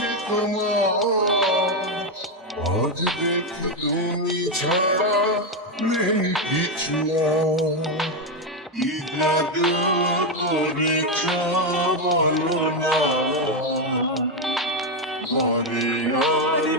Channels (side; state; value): both; normal; correlation 0.06